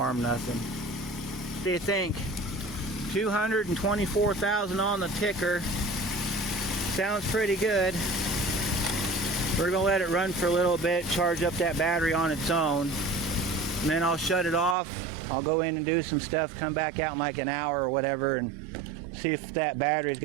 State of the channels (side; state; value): left; drops out; at 14.8 s